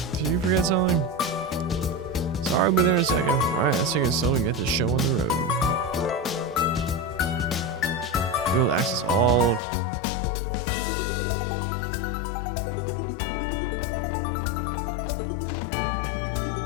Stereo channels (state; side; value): drops out; right; at 9.6 s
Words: Did you forget something? Sorry, I'll be there in a second. Alright, let's take it slow and get this show on the road. Be able to access all crossbow via the orbital car.